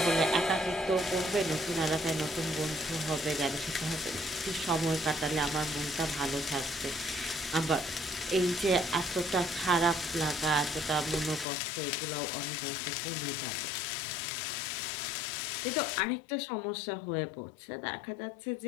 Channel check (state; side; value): drops out; right; at 11.5 s